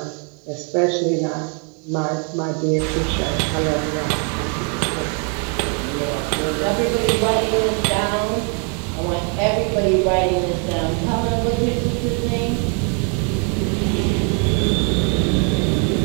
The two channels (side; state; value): left; quieter; 38.9 dB